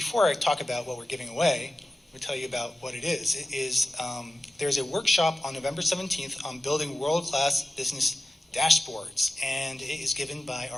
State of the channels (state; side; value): normal; both; correlation 0.94